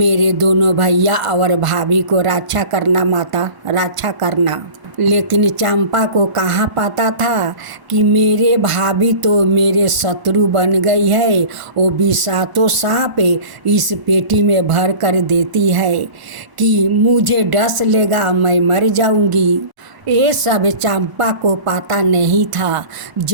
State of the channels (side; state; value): left; late; 1.4 ms